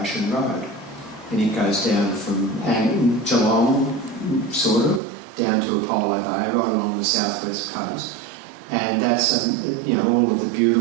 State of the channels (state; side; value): drops out; left; at 5.0 s